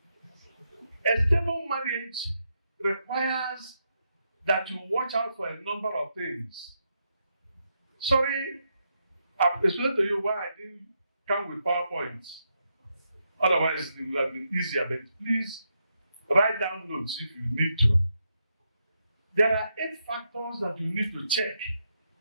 A stable marriage requires that you watch out for a number of things. Sorry, I've explained to you why I didn't come with PowerPoints. Otherwise, it would have been easier, but please write down notes if you need to. There are 8 factors that you need to check.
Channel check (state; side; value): inverted; both; correlation -0.82